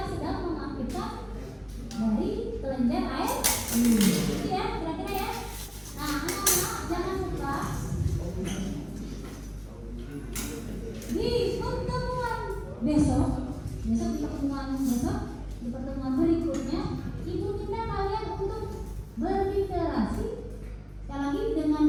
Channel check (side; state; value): both; identical; correlation 1.00